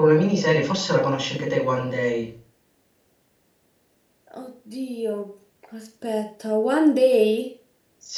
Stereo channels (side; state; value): both; identical; correlation 1.00